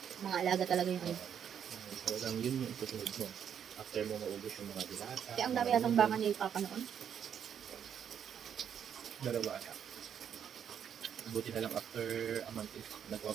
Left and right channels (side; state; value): left; quieter; 8.5 dB